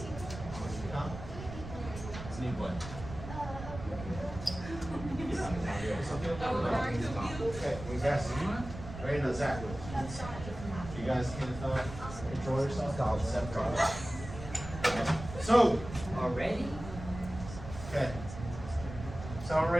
Need what? Okay, you guys ready to Zach? You guys can control yourself. I'll separate. So, Already? okay. Someone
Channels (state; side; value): noise; right; rumble, 11 dB below the sound